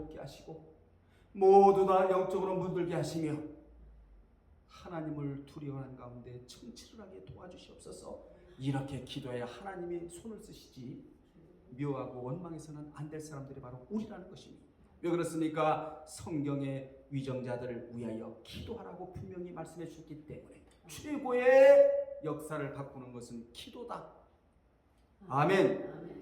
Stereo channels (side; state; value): both; identical; correlation 1.00